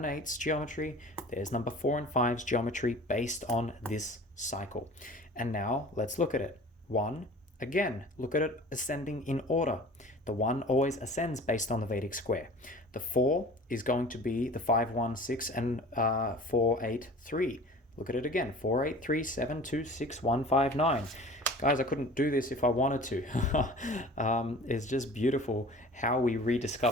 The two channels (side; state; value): both; normal; correlation 0.43